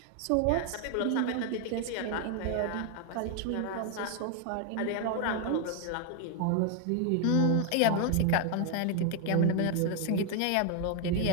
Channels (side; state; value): both; different; correlation 0.00